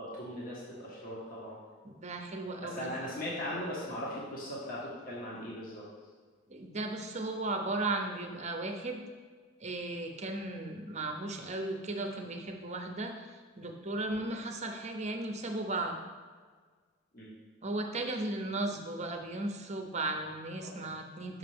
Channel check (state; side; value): normal; both; correlation 0.25